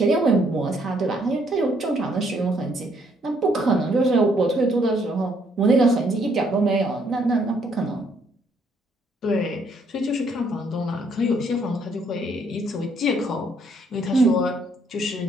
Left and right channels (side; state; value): both; normal; correlation 0.68